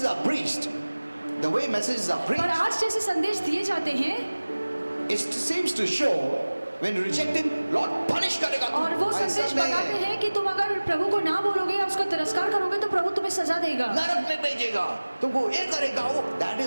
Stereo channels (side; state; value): both; inverted; correlation -1.00